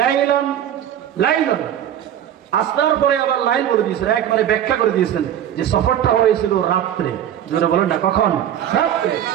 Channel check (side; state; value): left; quieter; 10.5 dB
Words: আসনার পরে আবার লাইল বলে দিয়েছেন, একবারে ব্যাখ্যা করে দিয়েছেন যে সফরটা হয়েছিল রাত্রে। জোরে বলেন না, কখন? রাত্রে।